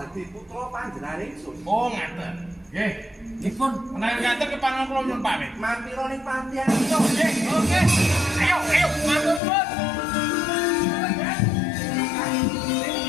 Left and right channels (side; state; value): right; drops out; at 9.4 s